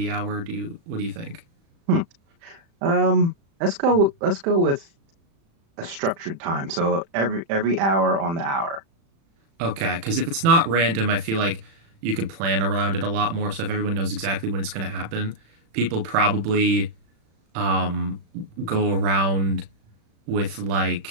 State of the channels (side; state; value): left; late; 36 ms